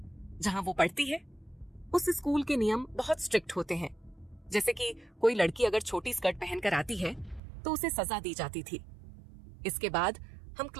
जहां वो पढ़ती है। उस स्कूल के नियम बहुत स्ट्रिक्ट होते हैं, जैसे कि कोई लड़की अगर छोटी स्कर्ट पहनकर आती है तो उसे सजा दी जाती थी। इसके बाद हम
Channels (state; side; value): drops out; left; at 7.4 s